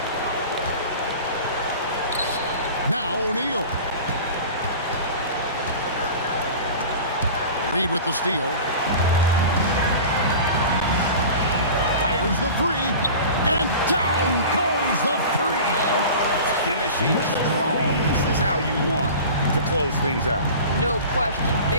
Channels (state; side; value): inverted; both; correlation -0.37